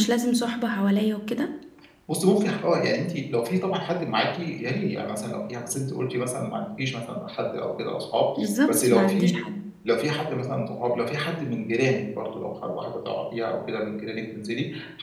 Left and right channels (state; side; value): identical; both; correlation 1.00